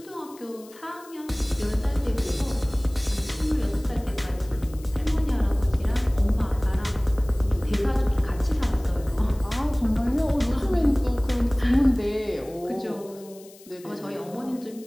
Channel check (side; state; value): left; noise; hiss, 23 dB below the sound